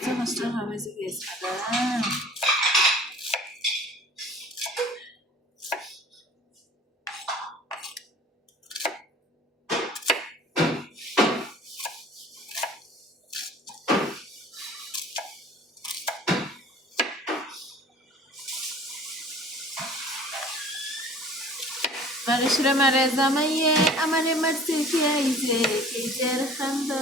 কষ্ট হবে যে গেছে মানুষরা মারে জামাইয়ে আমারে মারতে খেয়েছে, কেজের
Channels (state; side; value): normal; both; correlation 0.46